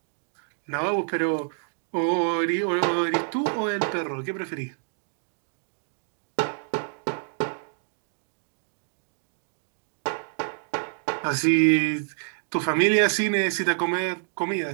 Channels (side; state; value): left; silent; digital silence